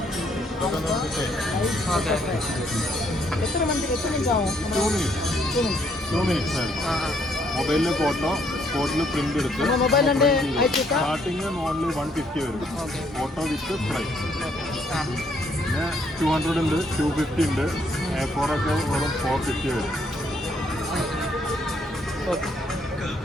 ഓക്കെ എത്ര മിനിറ്റ് ആവും? 2 മിനിറ്റ്സ് മൊബൈലിലെ ഫോട്ടോ സ്പോട്ടിൽ പ്രിന്റ് എടുത്ത് മൊബൈലിൻ്റെ അയച്ചിട്ടാ സ്റ്റാർട്ടിങ് ഓൺലി 150 വരും. Okay photo with frame. ആ പിന്നെ 200 ഉണ്ട്, 250 ഉണ്ട്. A4 ഒക്കെ വെറും 450 വരും. ஓகே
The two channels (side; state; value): both; normal; correlation 0.69